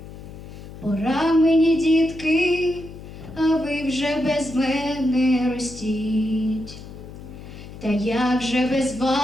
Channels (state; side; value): noise; left; hum, 14 dB below the sound